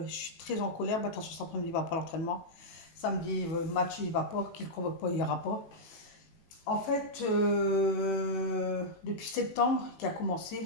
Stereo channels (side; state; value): right; late; 19 ms